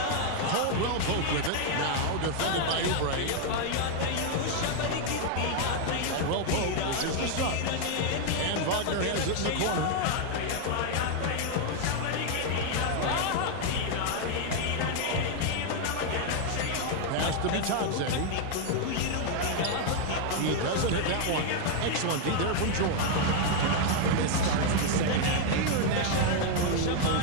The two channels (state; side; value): different; both; correlation 0.00